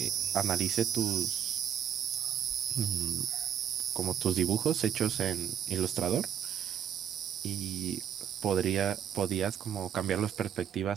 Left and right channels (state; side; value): quieter; left; 9.3 dB